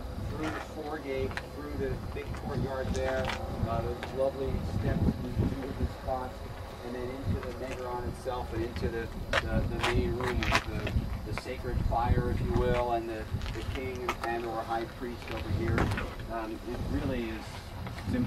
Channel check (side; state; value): both; identical; correlation 1.00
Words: through the foregate, through the big courtyard there, those lovely steps into the spots, and then into the Megaron itself, and into the main room with the sacred fire, if you will, and the king and or high priest over here. It really is, it's